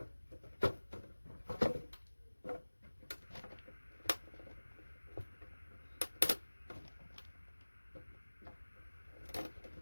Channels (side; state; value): both; inverted; correlation -1.00